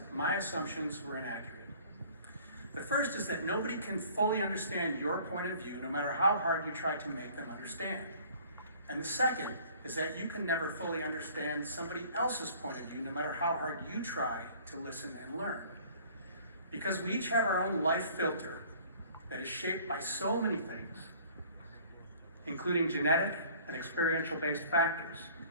my assumptions were inaccurate. The first is that nobody can fully understand your point of view, no matter how hard you try to make them understand. And the second is that you can never fully understand somebody else's point of view, no matter how hard you try to listen and learn. Because we each have our own life filter that is shaped by so many things, including genetic and experiential-based factors.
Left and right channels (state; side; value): inverted; both; correlation -0.52